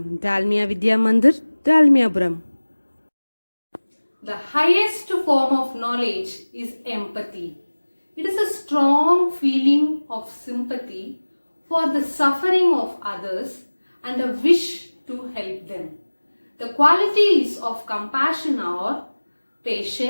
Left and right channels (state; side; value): inverted; both; correlation -1.00